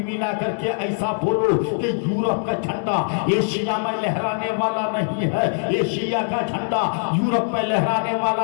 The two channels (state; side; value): silent; right; digital silence